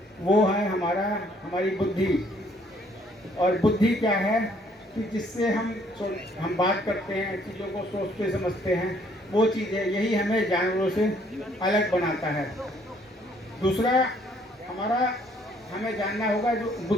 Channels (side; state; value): both; normal; correlation 0.64